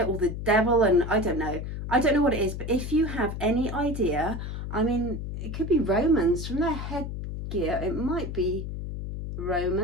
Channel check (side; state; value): left; noise; hum, 6 dB below the sound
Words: or the devil, and I don't know. I don't know what it is, but if you have any idea, I mean, it could be Romans from their headgear. It might be